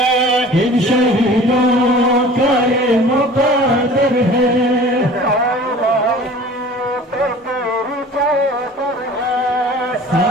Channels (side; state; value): both; normal; correlation 0.44